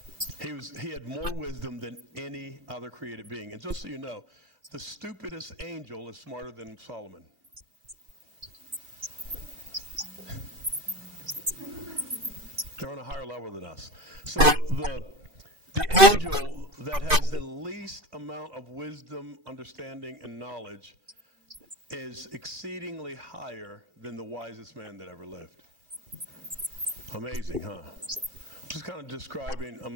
He had more wisdom than any other created being. And just so you know, the stupidest angel is smarter than Solomon. They're on a higher level than us. So the angel that has the least amount of wisdom, understanding, and knowledge is exceedingly higher than the wisest man that ever lived. Amazing, huh? Just kind of describing,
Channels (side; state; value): left; late; 2.5 ms